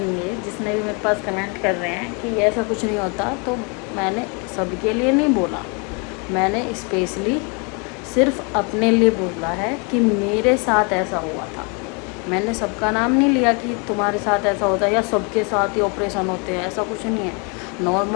जिसने भी मेरे पास कमेंट कर रहे हैं कि ऐसा कुछ नहीं होता, तो मैंने सबके लिए नहीं बोला। मैंने स्पेशली सिर्फ अपने लिए बोला है कि मेरे साथ ऐसा हुआ था। मैंने सबका नाम नहीं लिया कि तुम्हारे साथ ऐसा होता है या सबके साथ ही ऑपरेशन होते हैं, ऐसा कुछ नहीं है।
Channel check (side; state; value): right; quieter; 33.8 dB